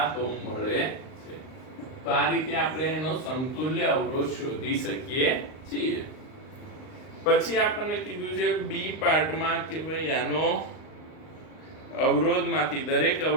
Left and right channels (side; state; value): right; late; 38 ms